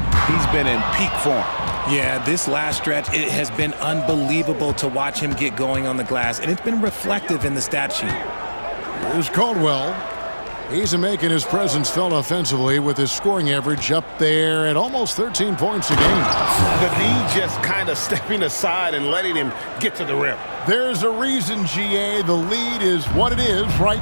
been in peak form. Yeah, this last stretch, it has been unbelievable to watch him get going on the glass, and it's been reflective in the stat sheet. Here's Caldwell. He's making his presence felt offensively with his scoring average up there at almost 13 points a game. The D just kind of stepping aside and letting him get to the rim. There's a reason, GA, the lead is what it is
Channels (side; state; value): both; inverted; correlation -1.00